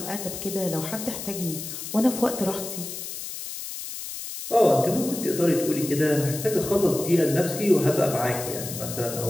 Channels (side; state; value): left; noise; hiss, 8 dB below the sound